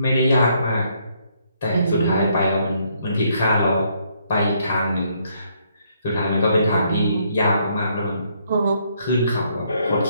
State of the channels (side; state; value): both; inverted; correlation -0.71